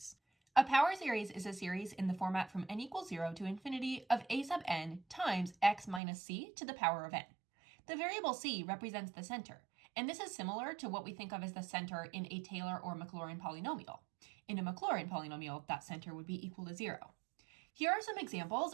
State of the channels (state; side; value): drops out; left; at 6.0 s